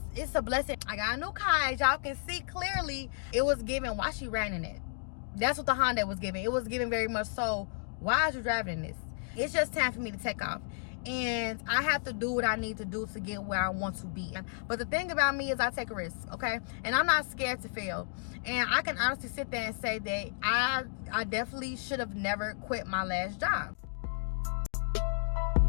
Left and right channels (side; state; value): right; silent; digital silence